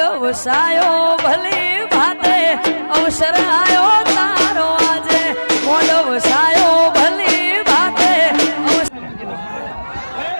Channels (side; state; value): both; inverted; correlation -1.00